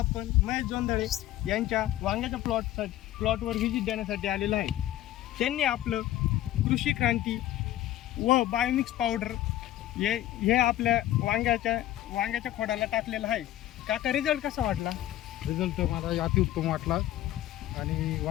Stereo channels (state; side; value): quieter; right; 13.8 dB